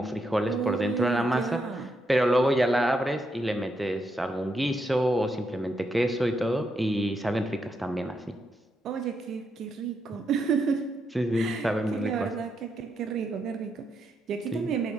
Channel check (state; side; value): normal; both; correlation 0.81